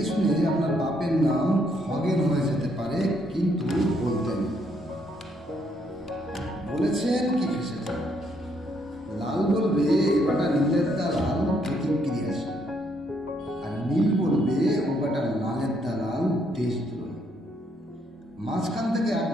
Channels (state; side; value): normal; both; correlation 0.72